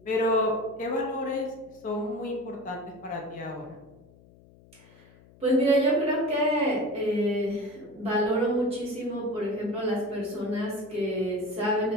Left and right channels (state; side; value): noise; left; hum, 25 dB below the sound